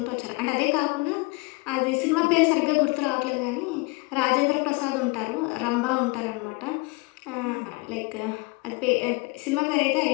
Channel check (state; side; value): quieter; right; 26.2 dB